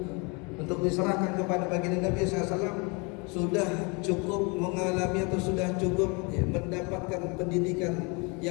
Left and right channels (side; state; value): right; quieter; 30.9 dB